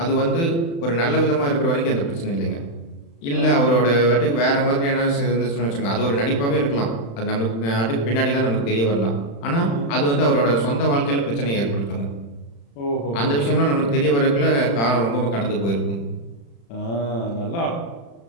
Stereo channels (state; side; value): late; right; 35 ms